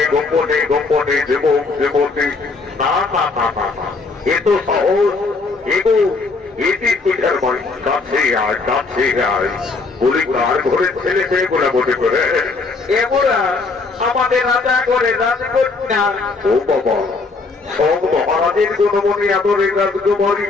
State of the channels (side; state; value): right; quieter; 4.0 dB